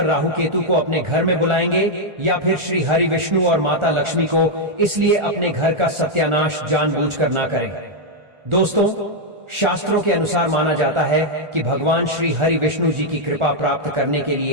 राहु केतु को अपने घर में बुलाएंगे या फिर श्री हरि विष्णु और माता लक्ष्मी को। इसलिए अपने घर का सत्यानाश जानबूझकर ना करें। दोस्तों, शास्त्रों के अनुसार माना जाता है कि भगवान श्री हरि विष्णु जी की कृपा प्राप्त करने के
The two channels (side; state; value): left; late; 1.4 ms